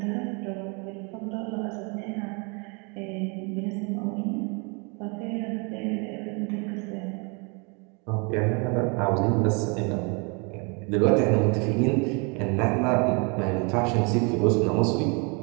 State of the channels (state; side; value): quieter; left; 32.8 dB